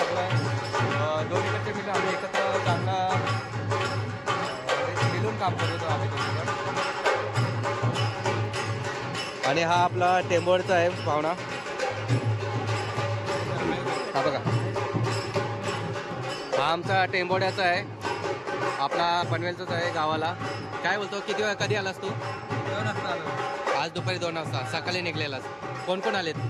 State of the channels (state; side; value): identical; both; correlation 1.00